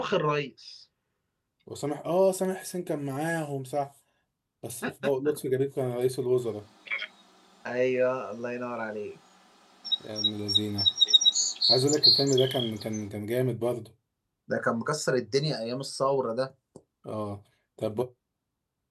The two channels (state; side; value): identical; both; correlation 1.00